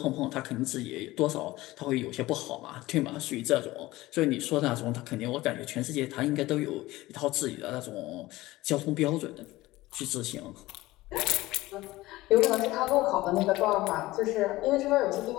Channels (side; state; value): right; quieter; 18.3 dB